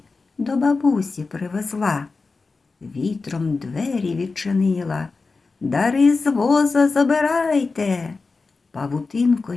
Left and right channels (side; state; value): right; quieter; 4.1 dB